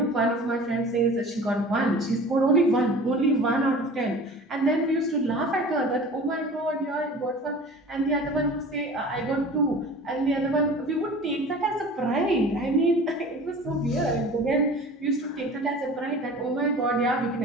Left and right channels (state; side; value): normal; both; correlation 0.40